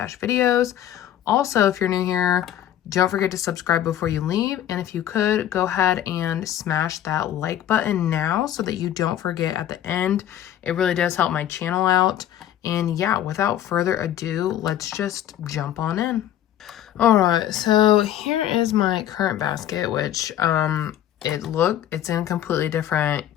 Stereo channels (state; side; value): quieter; right; 11.4 dB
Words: videos. Also, if you're new here, don't forget to subscribe before you leave. And if you could, go ahead and smash that like button now so that you don't forget at the end. It really does help my channel out. And yeah, without further ado, let's just jump on in. All right, so here is my current basket, which it's in a completely different